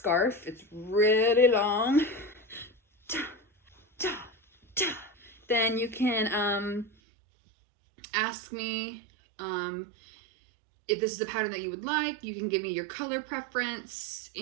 it's really long, then you can ask me if this is a pattern that you would like. You can give me your color preference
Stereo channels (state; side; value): drops out; left; at 6.9 s